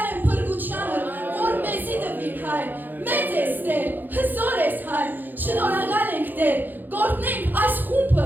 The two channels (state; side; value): late; left; 0.088 ms